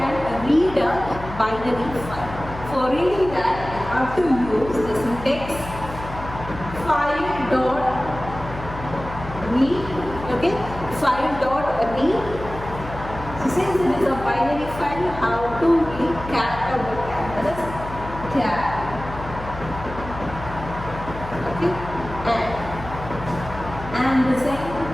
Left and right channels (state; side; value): noise; left; hum, 11 dB below the sound